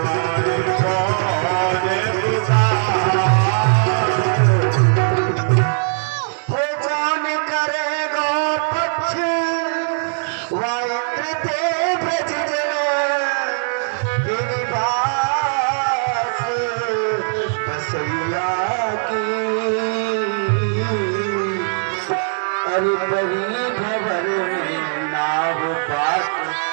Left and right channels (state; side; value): silent; left; digital silence